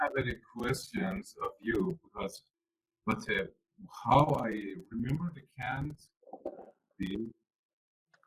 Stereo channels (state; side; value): identical; both; correlation 1.00